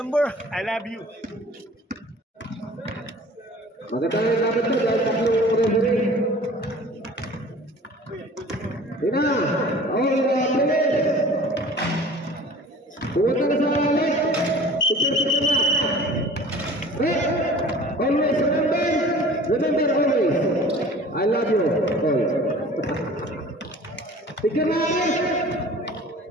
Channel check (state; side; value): normal; both; correlation 0.45